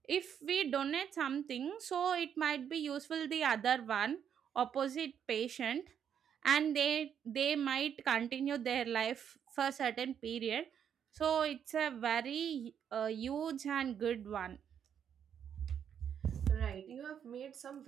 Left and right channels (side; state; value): left; quieter; 8.4 dB